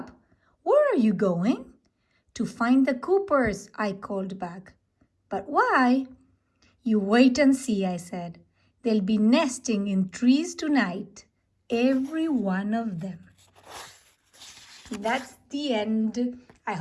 Where are you going?" "To find the Coopers," I called back. "But why?" "You wait and see," I said. "They'll be nesting in trees tonight. Every one of them." That's the end. I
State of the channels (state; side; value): identical; both; correlation 1.00